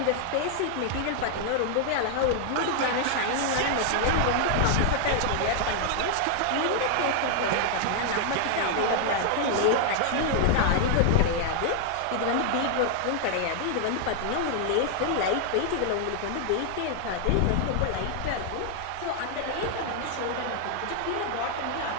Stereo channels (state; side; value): different; both; correlation 0.00